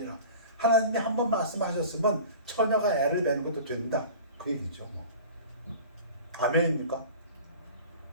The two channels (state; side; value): inverted; both; correlation -0.40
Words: 하나님이 한번 말씀하셨으면 처녀가 애를 배는 것도 된다, 그 얘기죠. 아멘입니까?